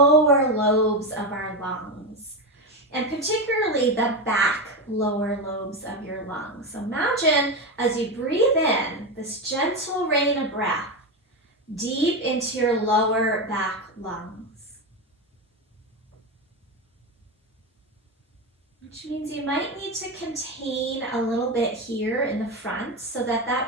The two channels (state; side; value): normal; both; correlation 0.14